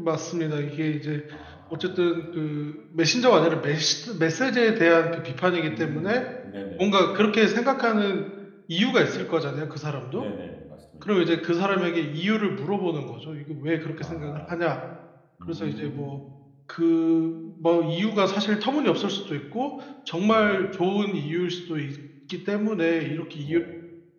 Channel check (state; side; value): identical; both; correlation 1.00